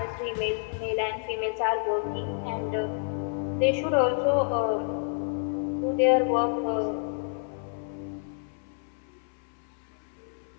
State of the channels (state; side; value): silent; right; 59 dB below the other